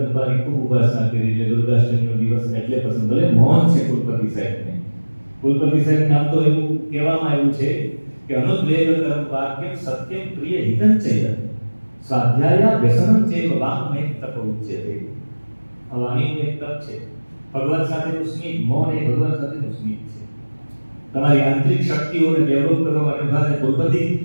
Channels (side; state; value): both; inverted; correlation -1.00